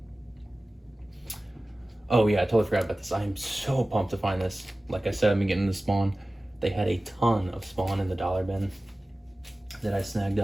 Oh yeah, I totally forgot about this. I am so pumped to find this. Like I said, I've been getting the Spawn. They had a ton of Spawn in the dollar bin that I snagged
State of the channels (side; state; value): both; normal; correlation 0.97